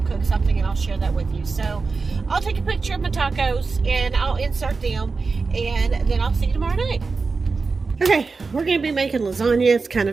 cook something, and I'll share that with you. So, I'll take a picture of my tacos, and I'll insert them, and then I'll see you tomorrow night. Okay, we're going to be making lasagna. It's kind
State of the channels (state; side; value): quieter; left; 4.4 dB